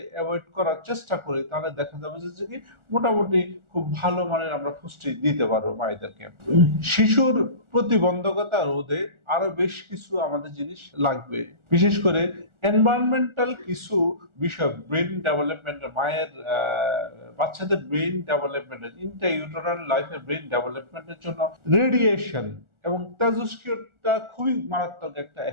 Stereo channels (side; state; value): left; late; 1.4 ms